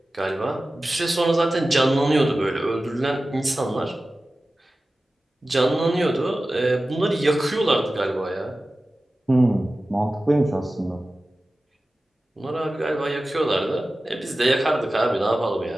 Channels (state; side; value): normal; both; correlation 0.95